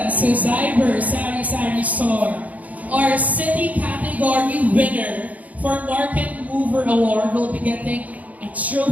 to Zyber Sari Sari Store, our city category winner for Market Mover Award. Will be getting a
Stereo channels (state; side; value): late; left; 0.074 ms